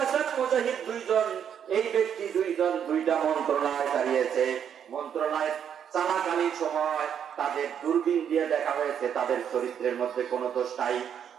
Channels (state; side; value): quieter; left; 8.5 dB